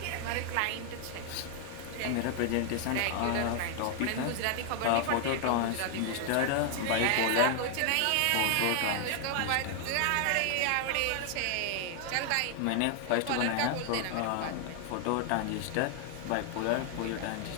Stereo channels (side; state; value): both; different; correlation 0.00